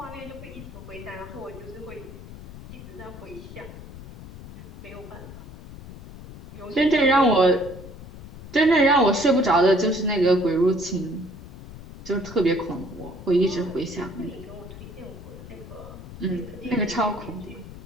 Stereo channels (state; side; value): noise; left; rumble, 14 dB below the sound